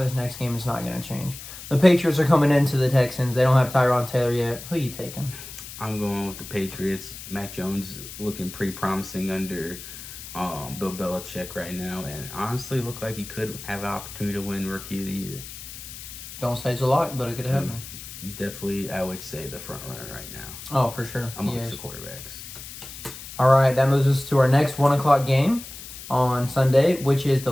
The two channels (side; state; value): left; noise; hiss, 13 dB below the sound